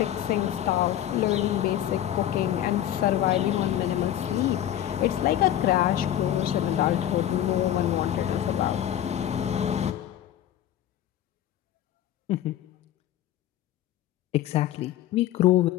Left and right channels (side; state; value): right; quieter; 11.8 dB